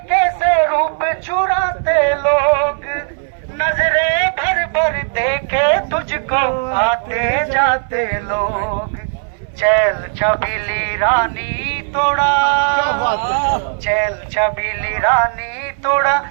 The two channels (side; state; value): left; silent; 64 dB below the other